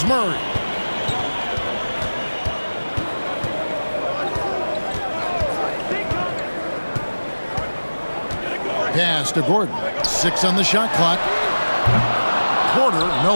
Murray. Pass to Gordon. 6 on the shot clock. Porter, no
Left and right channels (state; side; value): inverted; both; correlation -1.00